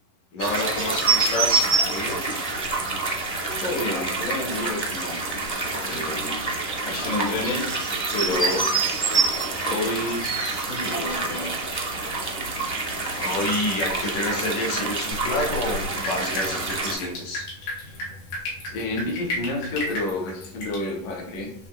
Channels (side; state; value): right; late; 11 ms